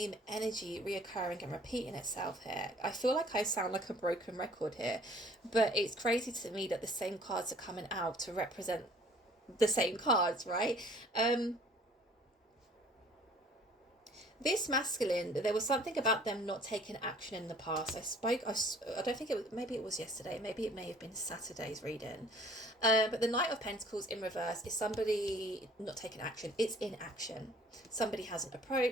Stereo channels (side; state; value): both; normal; correlation 0.54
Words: energy reoccurring and repeating itself here. I feel like I sound like a broken record here, but it's crazy to me that the same cards are coming out to represent the same cards, right? This masculine, there was something about them not taking action in the past. I don't think it was, maybe it was yesterday, maybe it may have been Saturday's reading. But the Knight of Pentacles in reverse is somebody not taking action. It's inaction. Somebody hasn't